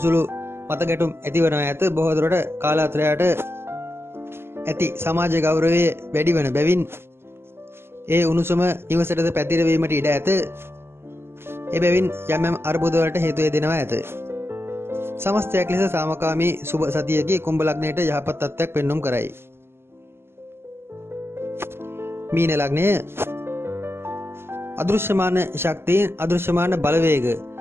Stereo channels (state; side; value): late; left; 0.12 ms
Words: මතගැටුම් ඇති වෙනවා ඇත. බොහෝ දුරට කාලාන්තරයට ඇති සමාජ ගෞරවය වැඩි වන බැවින් ඒ උණුසුම නිවසටද පැතිරවීමට ඉඩ ඇත. එබැවින් යම් අර්බුද වලට හේතු වෙනවා ඇත. සමස්තයක් ලෙස සාමකාමී සුබ සතියකී කුම්භ ලග්නයට යහපත් තත්ත්වයක් පෙන්눔 කරයි. මීන ලග්නය අදෘශ්‍යමාන ශක්තියෙන් අදෘශ්‍යමාන බලවේග